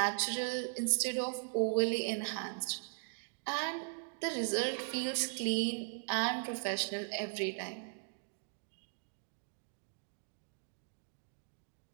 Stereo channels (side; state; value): left; silent; digital silence